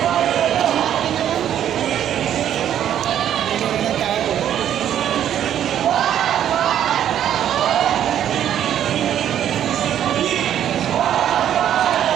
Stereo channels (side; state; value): left; quieter; 10.4 dB